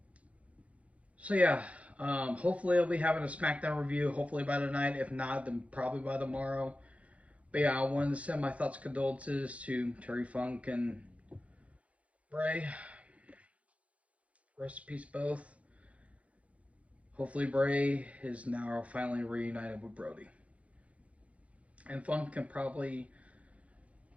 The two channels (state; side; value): late; left; 0.065 ms